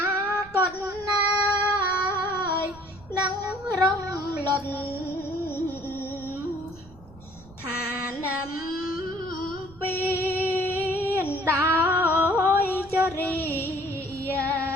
គតណាយនឹងរំលត់ឋានំពីនដោយចរិយា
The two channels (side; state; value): right; noise; rumble, 22 dB below the sound